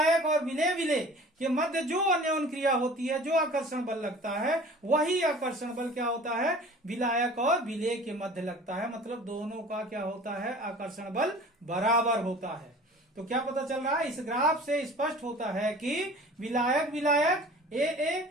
और विलेय विलेय के मध्य जो अन्योन क्रिया होती है, जो आकर्षण बल लगता है, वही आकर्षण बल क्या होता है, विलायक और विलेय के मध्य लगता है। मतलब दोनों का क्या होता है, आकर्षण बल बराबर होता है। तो क्या पता चल रहा है, इस ग्राफ से स्पष्ट होता है कि विलायक विलायक ए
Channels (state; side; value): normal; both; correlation 0.44